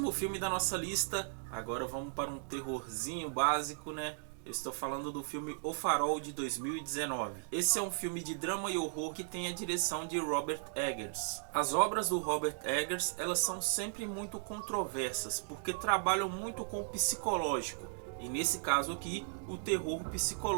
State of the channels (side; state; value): left; silent; digital silence